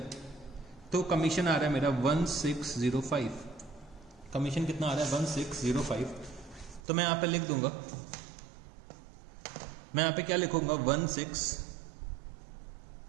तो कमीशन आ रहा है मेरा 1605। कमीशन कितना आ रहा है? 1605। तो मैं यहां पे लिख दूंगा, मैं यहां पे क्या लिखूंगा?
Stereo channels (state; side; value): drops out; left; at 6.8 s